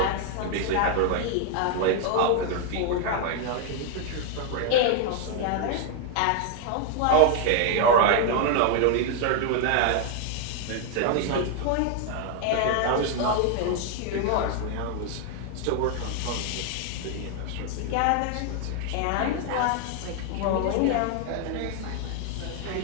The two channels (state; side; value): different; both; correlation 0.00